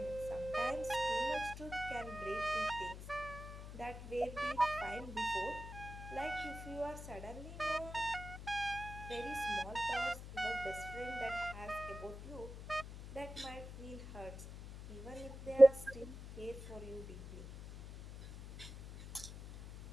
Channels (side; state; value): left; noise; hum, 11 dB below the sound